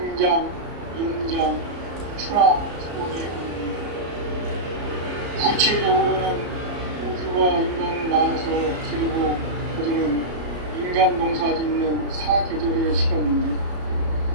연장, 추나, 추동의 의미. 구체적으로는 우주가 인간을 낳아서 기르고 거두는 인간 농사 짓는 사계절의 시간입니다.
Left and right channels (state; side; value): late; left; 33 ms